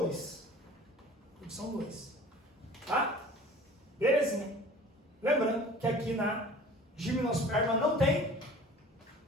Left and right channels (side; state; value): both; normal; correlation 0.45